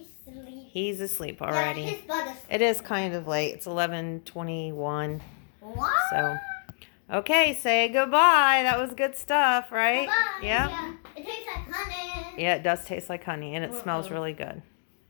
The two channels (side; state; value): right; silent; digital silence